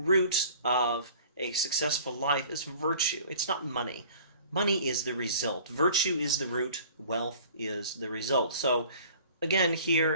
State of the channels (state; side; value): inverted; both; correlation -0.48